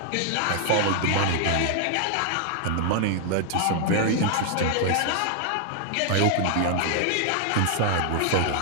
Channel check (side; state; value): both; different; correlation 0.00